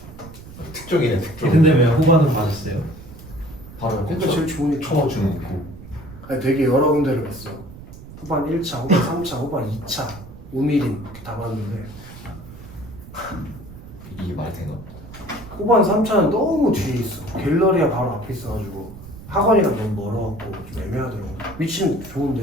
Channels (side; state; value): right; noise; rumble, 16 dB below the sound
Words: 특종이네 특종. 근데 왜 후반은 맞았어요? 바로 그러니까 제일 좋으니까. 쳐주는 거. 아니 되게 여러 군데를 갔어. 후반 1차, 후반 3차, 후반 2차, 우미린 이렇게 다 봤는데 이게 말이 되나? 후반 3차는 너무 뒤에 있어. 갤러리아 바로 앞에 있어가지고 학원이랑 너무 멀어갖고 좀 애매하더라고. 위치는